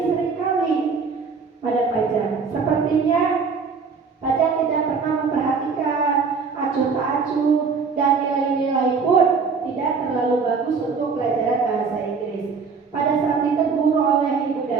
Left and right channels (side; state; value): left; quieter; 5.2 dB